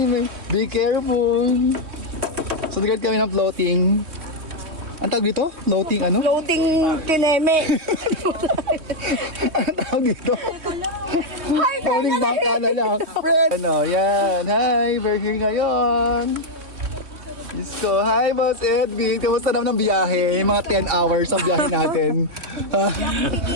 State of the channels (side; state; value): left; late; 3.2 ms